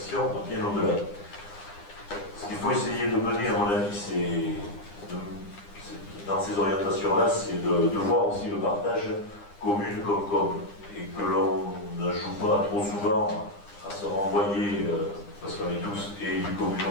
dans ces orientations-là, c'est de voir aussi le partage commune comme, et que l'on ne joue pas trop souvent à se renvoyer, parce qu'on est tous élus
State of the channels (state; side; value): late; right; 9.9 ms